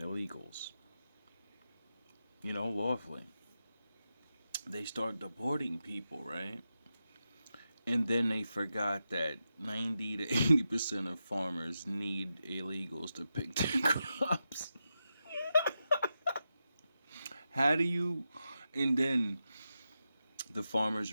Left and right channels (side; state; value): both; inverted; correlation -0.89